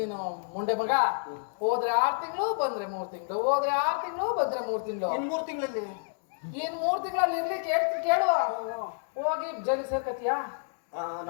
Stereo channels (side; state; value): right; silent; digital silence